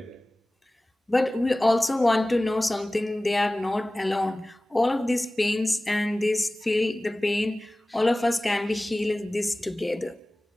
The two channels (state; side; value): normal; both; correlation 0.98